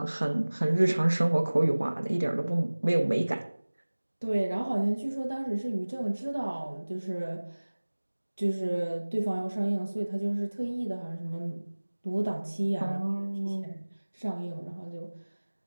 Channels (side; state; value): both; inverted; correlation -1.00